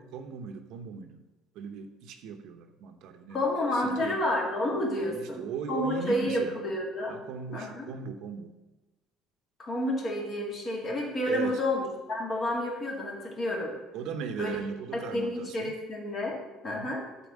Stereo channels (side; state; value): both; normal; correlation 0.58